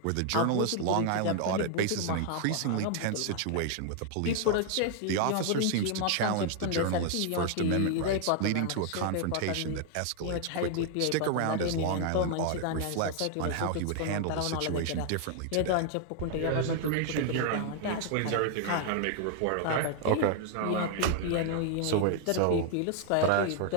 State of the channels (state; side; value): different; both; correlation 0.00